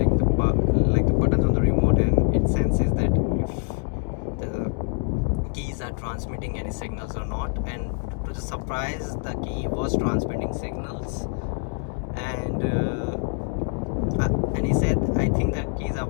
the buttons on the remote, and it senses that if the keys are transmitting any signals or not. And to the surprise, the key was transmitting signals, and he said, I think the keys are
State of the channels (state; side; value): quieter; right; 39.9 dB